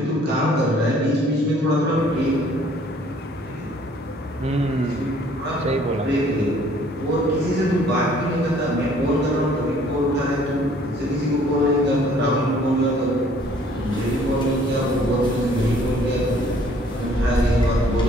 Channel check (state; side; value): normal; both; correlation 0.58